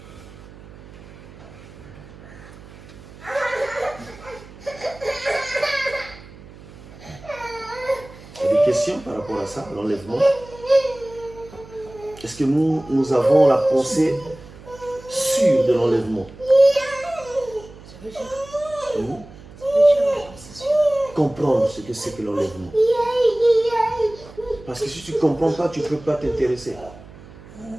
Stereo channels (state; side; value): noise; right; hum, 19 dB below the sound